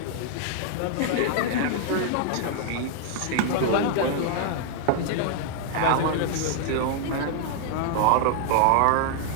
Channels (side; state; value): both; different; correlation 0.00